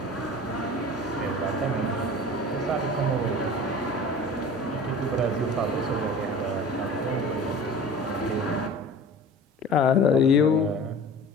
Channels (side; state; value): both; normal; correlation 0.39